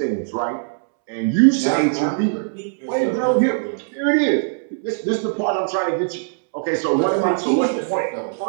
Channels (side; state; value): left; silent; 65 dB below the other